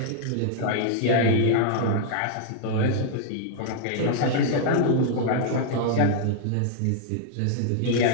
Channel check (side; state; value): both; different; correlation -0.01